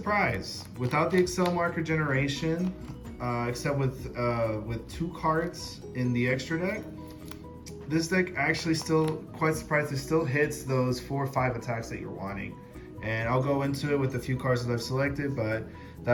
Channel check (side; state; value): both; identical; correlation 1.00